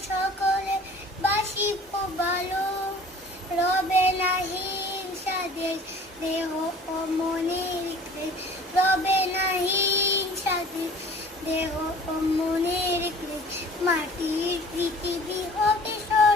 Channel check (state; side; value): normal; both; correlation 0.47